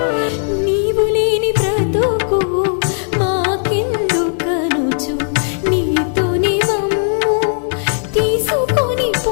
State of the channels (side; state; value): right; silent; 69 dB below the other